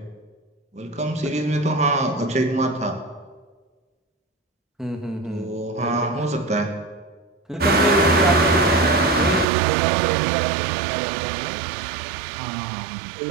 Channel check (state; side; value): drops out; left; at 9.5 s